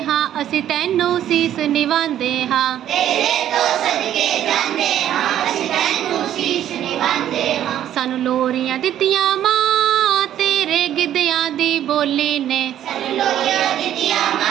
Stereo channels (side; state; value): left; quieter; 11.2 dB